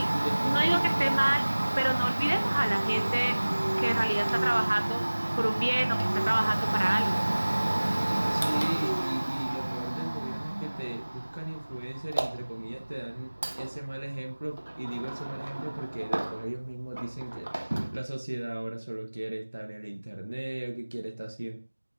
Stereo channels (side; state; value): both; inverted; correlation -1.00